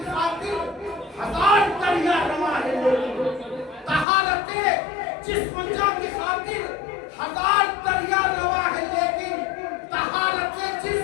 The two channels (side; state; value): right; drops out; at 4.0 s